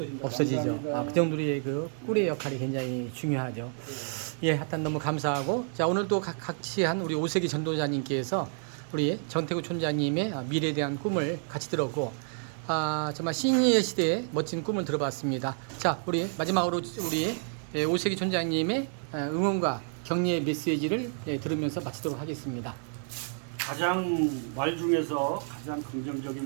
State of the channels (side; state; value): left; silent; 56 dB below the other